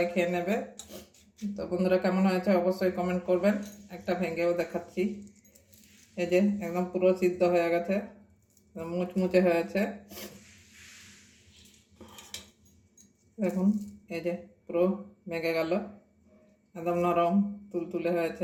খেয়ে নেবে। তো বন্ধুরা, কেমন হয়েছে অবশ্যই কমেন্ট করবেন। একটা ভেঙেও দেখাচ্ছি, এই যে একদম পুরো সিদ্ধ হয়ে গেছে, মুচমুচে হয়েছে। দেখুন, এই যে পুরো ভেঙে গেল, একদম নরম তুলতুলে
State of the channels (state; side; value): identical; both; correlation 1.00